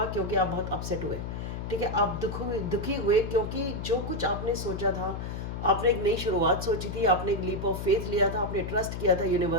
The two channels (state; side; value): noise; left; hum, 6 dB below the sound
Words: क्योंकि आप बहुत अपसेट हुए, ठीक है। आप दुखी हुए क्योंकि जो कुछ आपने सोचा था, आपने एक नई शुरुआत सोची थी, आपने एक लीप ऑफ फेथ लिया था, आपने ट्रस्ट किया था